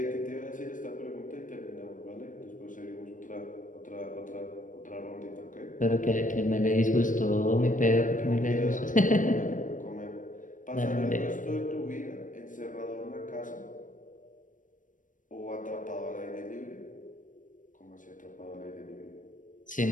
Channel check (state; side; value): late; right; 0.38 ms